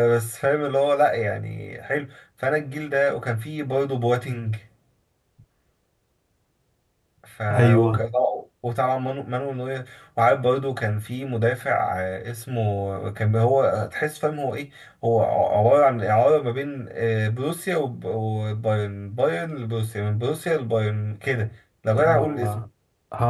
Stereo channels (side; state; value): both; identical; correlation 1.00